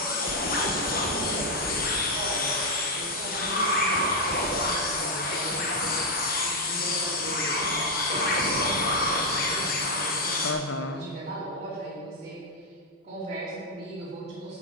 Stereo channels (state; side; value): normal; both; correlation 0.00